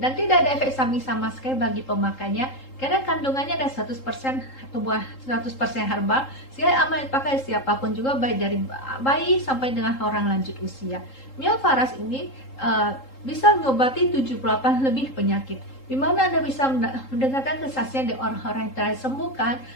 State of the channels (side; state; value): right; late; 3.8 ms